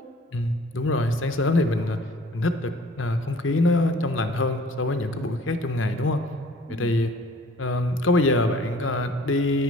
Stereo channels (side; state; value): both; normal; correlation 0.52